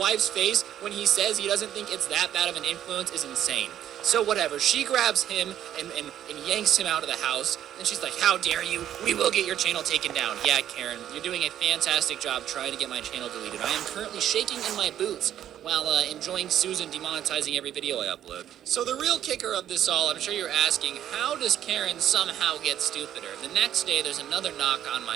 face when he says he doesn't think it's that bad of an influence is insane. So whatever, she grabs him and yanks him out of the house, and she's like, how dare you, we will get your channel taken down. Yeah, Karen, you're doing a fantastic job trying to get my channel deleted. I am currently shaking in my boots while enjoying Susan demonetizing every video I upload. So the real kicker of this all, I'm sure you're asking, how does Karen somehow get stupider? The next day, there's another knock on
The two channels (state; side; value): quieter; left; 10.9 dB